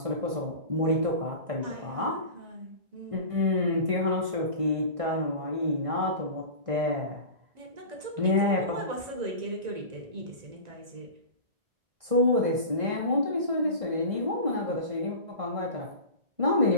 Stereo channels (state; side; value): late; left; 1.6 ms